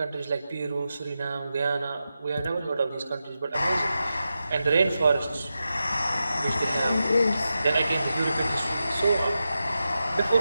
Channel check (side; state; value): both; inverted; correlation -0.90